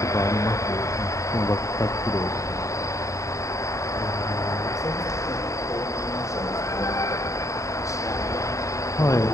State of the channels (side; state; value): right; late; 0.15 ms